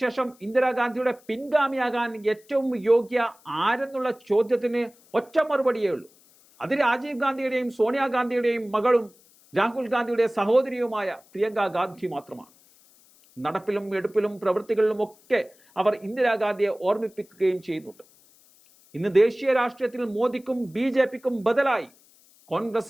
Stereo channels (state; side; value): noise; left; hiss, 29 dB below the sound